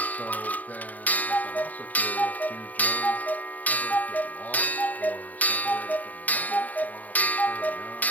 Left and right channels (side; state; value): right; late; 0.077 ms